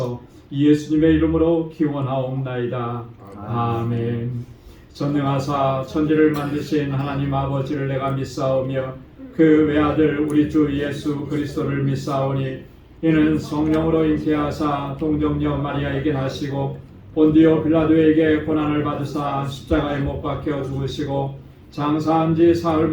예수님의 이름으로 기원하옵나이다. 아멘. 전능하사 천지를 만드신 하나님 아버지를 내가 믿사오며 그 외아들 우리 주 예수 그리스도를 믿사오니 이는 성령으로 잉태하사 동정녀 마리아에게 나시고 본디오 빌라도에게 고난을 받으사 십자가에 못 박혀 죽으시고 장사한 지 사흘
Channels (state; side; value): identical; both; correlation 1.00